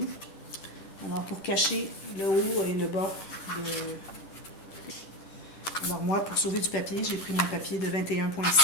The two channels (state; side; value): late; right; 10 ms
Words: Alors, pour cacher le haut et le bas de... Alors moi, pour sauver du papier, j'ai pris mon papier de